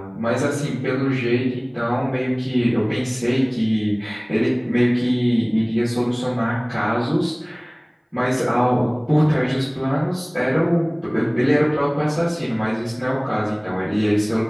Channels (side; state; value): both; identical; correlation 1.00